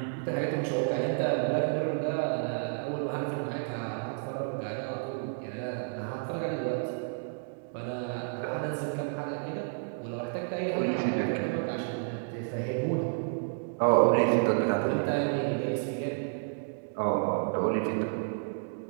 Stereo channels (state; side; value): silent; left; digital silence